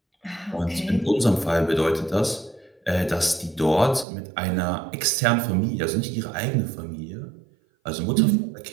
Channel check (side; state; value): left; drops out; at 4.0 s